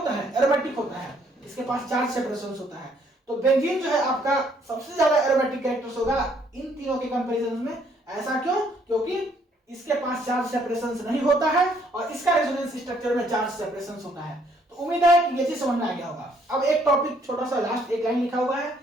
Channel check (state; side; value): normal; both; correlation 0.66